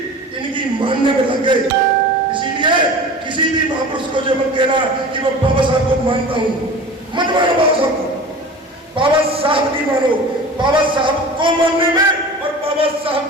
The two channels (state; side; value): normal; both; correlation 0.37